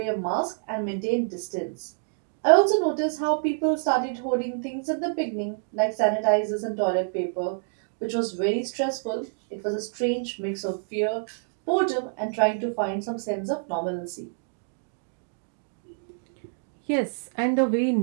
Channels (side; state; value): left; silent; digital silence